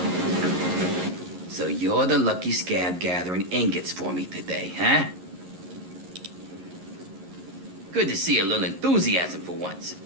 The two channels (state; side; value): late; left; 11 ms